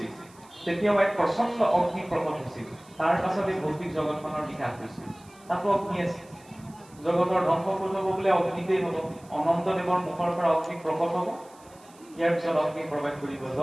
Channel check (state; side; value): noise; right; hiss, 26 dB below the sound